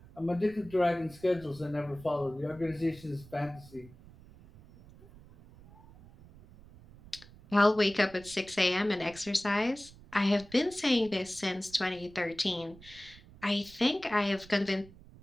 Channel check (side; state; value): right; noise; rumble, 21 dB below the sound